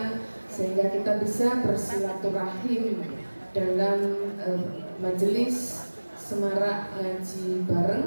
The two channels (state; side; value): inverted; both; correlation -1.00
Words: sehingga kita bisa bersilaturahim dalam majelis semarak ngaji